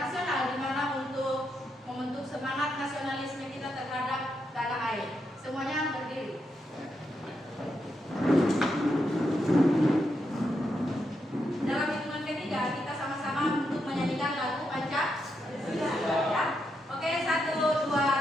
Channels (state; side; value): normal; both; correlation 0.82